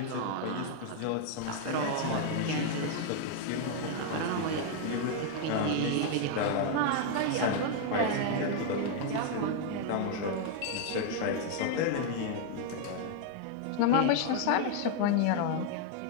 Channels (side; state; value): both; different; correlation 0.00